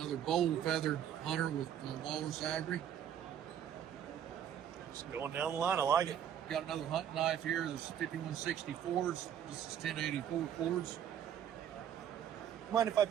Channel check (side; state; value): left; quieter; 9.6 dB